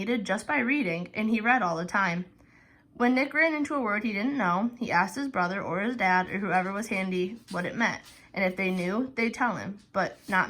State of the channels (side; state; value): both; identical; correlation 1.00